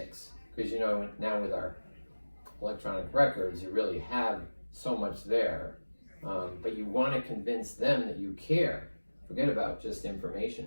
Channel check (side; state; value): both; inverted; correlation -1.00